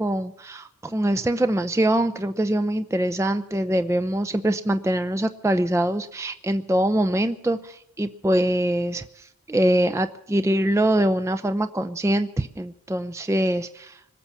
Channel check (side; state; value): both; normal; correlation 0.87